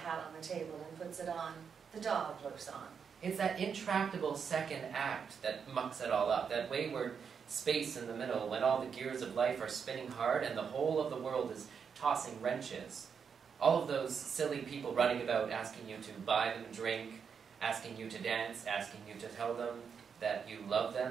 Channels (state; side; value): quieter; left; 6.6 dB